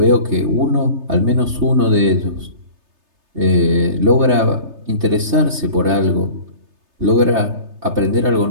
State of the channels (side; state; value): left; late; 3.3 ms